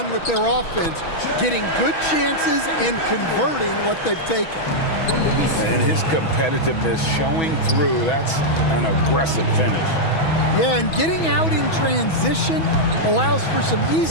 with their offense, getting good chances and converting what they've taken. And his competitiveness showing through. That's an aggressive finish. Yeah, and getting out in transition allows for some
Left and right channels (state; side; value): late; right; 6.1 ms